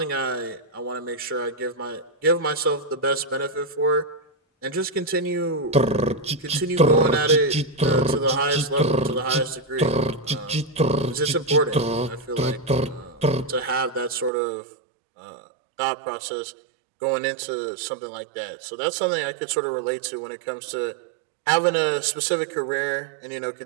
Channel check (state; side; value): drops out; left; at 14.3 s